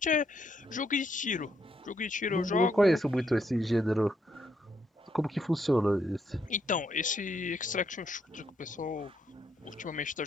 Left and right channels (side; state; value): both; normal; correlation 0.75